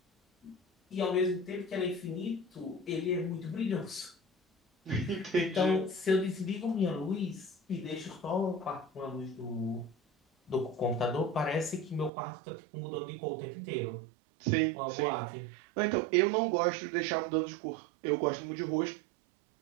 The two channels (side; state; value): left; drops out; at 12.1 s